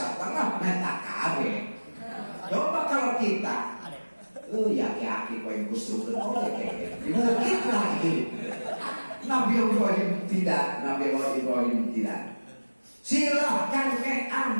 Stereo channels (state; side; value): inverted; both; correlation -1.00